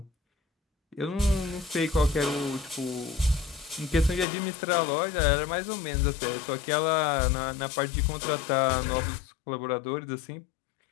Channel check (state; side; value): drops out; right; at 4.2 s